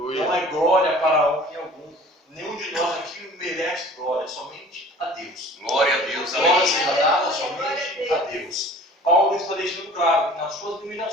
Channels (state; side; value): normal; both; correlation 0.46